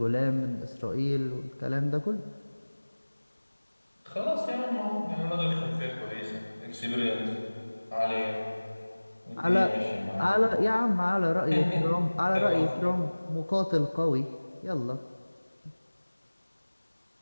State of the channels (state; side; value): inverted; both; correlation -1.00